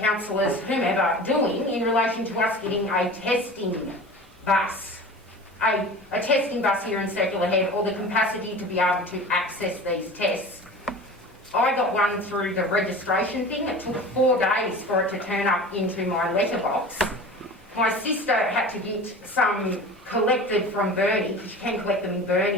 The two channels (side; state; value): both; normal; correlation 0.37